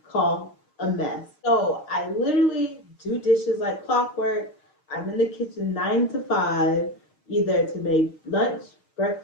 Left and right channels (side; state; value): right; late; 6.5 ms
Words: called a mess. So I literally do dishes like clockwork. I'm in the kitchen 9 to 5, either to make lunch,